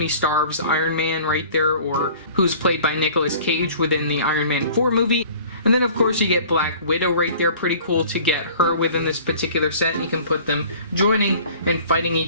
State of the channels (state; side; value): inverted; both; correlation -0.48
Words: Stark's Iron Man right there, or who's played by Nicolas Cage within the Iron Man 4 movie. And then of course you get Black Widow right there. Pretty cool to get her within this particular set. You can put them joining and fighting